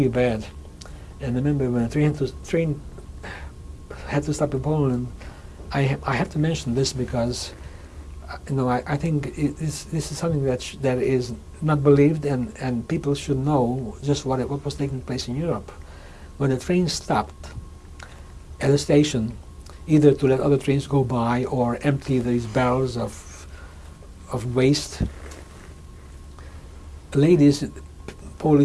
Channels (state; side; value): identical; both; correlation 1.00